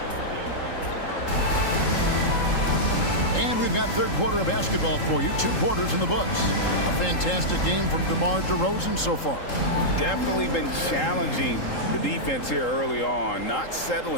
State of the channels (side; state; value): right; late; 3.8 ms